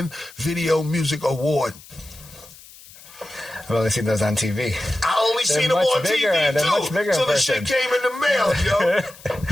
Video Music Award. I've only seen those on TV. I only seen them on TV too. Much bigger so the shit came in the mail, yo.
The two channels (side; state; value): left; noise; hiss, 21 dB below the sound